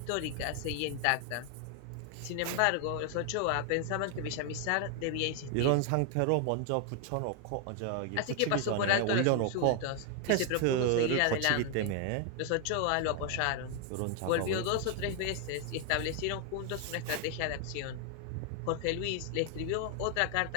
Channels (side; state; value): both; different; correlation 0.00